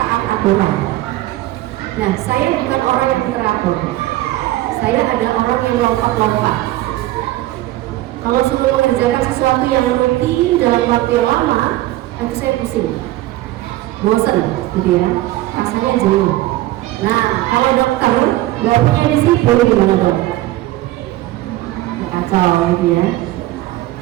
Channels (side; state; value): left; quieter; 16.4 dB